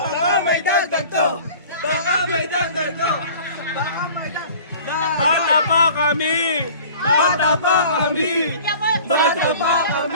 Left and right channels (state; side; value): inverted; both; correlation -0.45